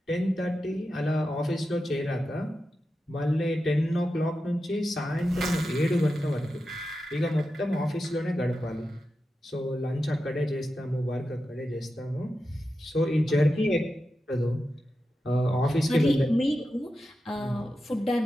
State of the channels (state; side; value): normal; both; correlation 0.90